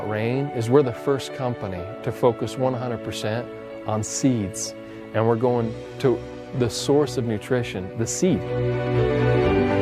Rain is we're the first company to focus 100% on seeds, and we're going to the source of nutrition, the seed.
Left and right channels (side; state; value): both; identical; correlation 1.00